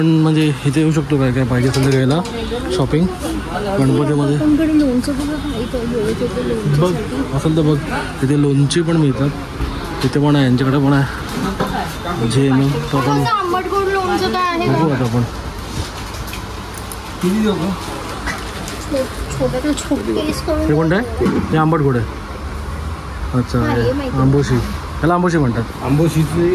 म्हणजे इथे येऊ शकतो काय काय पाहिजे असेल तर घ्यायला शॉपिंग गणपतीमध्ये. बघ असेल तर बघ इथे लोणची पण मिळतात, इथे पण आहे, यांच्याकडे पण आहे जे मग तो आपण बघू आता आपण. हे कोणतं आहे? हे आंबट गोड आहे. अच्छा आंबोशी, त्याला आंबोशी म्हणतात. आंबोशीची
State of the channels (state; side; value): identical; both; correlation 1.00